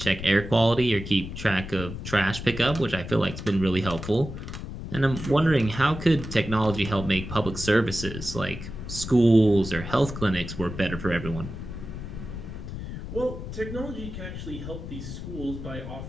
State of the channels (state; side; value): noise; left; rumble, 9 dB below the sound